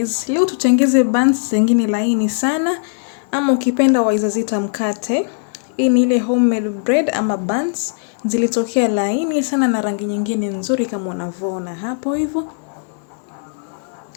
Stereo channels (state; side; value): silent; right; digital silence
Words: leo tutengeze buns zingine laini sana ama ukipenda waweza zita mkate. Hii ni ile homemade bread ama buns zilitokea laini sana na rangi nyingine nzuri kama unavyoona hapo hivyo.